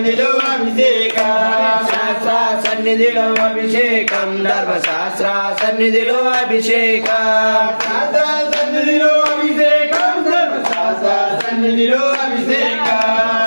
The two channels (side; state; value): both; inverted; correlation -1.00